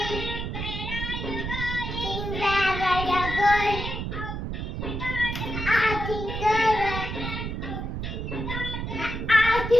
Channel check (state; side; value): noise; right; rumble, 4 dB below the sound